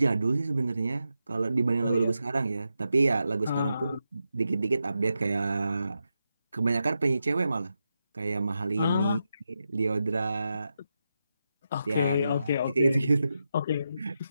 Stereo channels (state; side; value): inverted; both; correlation -0.87